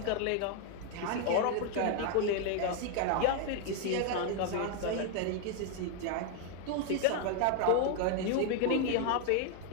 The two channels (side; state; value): both; different; correlation 0.00